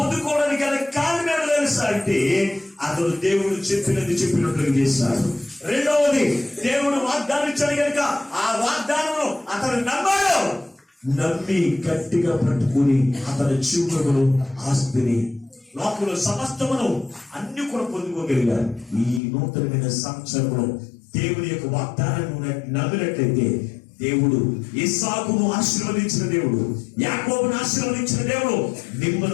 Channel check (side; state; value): right; drops out; at 19.2 s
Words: గల కారణం తెలుసా అంటే అతడు దేవుడు చెప్పినట్లుగా చేశాడు. రెండవది దేవుడు వాగ్దానం ఇచ్చాడు కనుక ఆ వాగ్దానంలో అతను నమ్మాడు. నమ్మి గట్టిగా పట్టుకుని అతని జీవితంలో ఆస్తిని లోకంలో సమస్తమును అన్ని కూడా పొందుకోగలిగారు. ఈ నూతనమైన సంవత్సరంలో దేవుని యొక్క వాగ్దానాన్ని నమ్మినట్లయితే దేవుడు ఇస్సాకును ఆశీర్వదించిన దేవుడు, యాకోబును ఆశీర్వదించిన దేవుడు